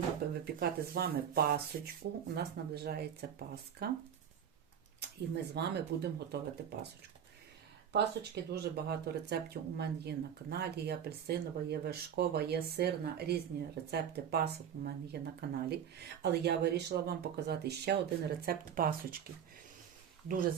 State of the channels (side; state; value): left; quieter; 8.6 dB